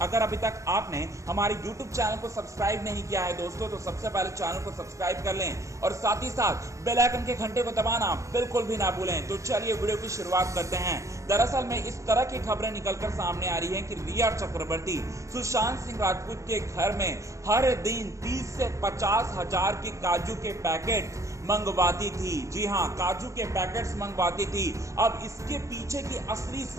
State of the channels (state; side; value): late; left; 0.15 ms